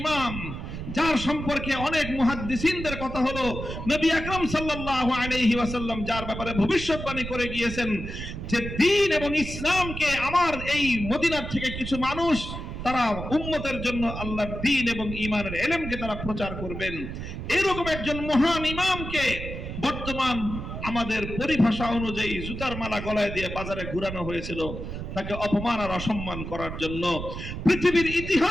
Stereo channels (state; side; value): noise; right; rumble, 7 dB below the sound